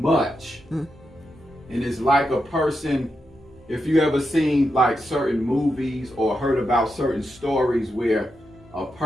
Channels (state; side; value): normal; both; correlation 0.86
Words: And it's like a person, if you ever seen like certain movies or heard about certain stories where a